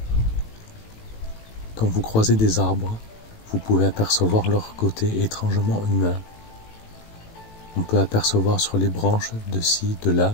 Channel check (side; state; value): right; late; 18 ms